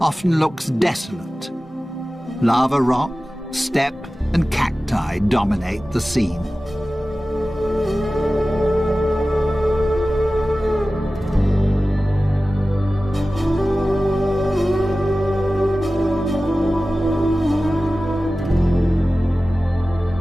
often looks desolate. Lava rock, steppe, and cacti dominate the scene.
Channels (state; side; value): normal; both; correlation 0.96